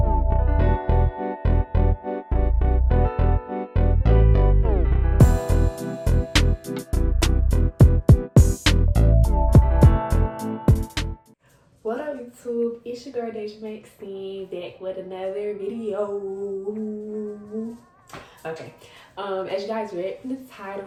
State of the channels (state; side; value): identical; both; correlation 1.00